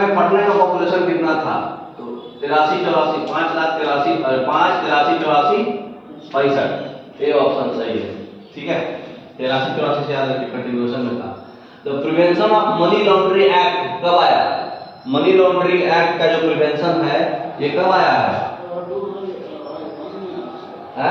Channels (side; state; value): both; identical; correlation 1.00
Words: पटना का पॉपुलेशन कितना था? तो 83-84 65, ए ऑप्शन सही है, ठीक है। 83-84 से याद रखिए, कंटिन्यूएशन में था। The prevention of money laundering act कब आया? मनी लॉन्ड्रिंग एक्ट का जो प्रिवेंशन है ये कब आया है?